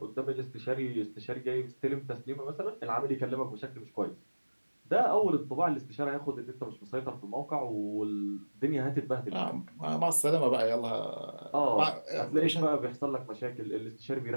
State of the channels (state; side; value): inverted; both; correlation -1.00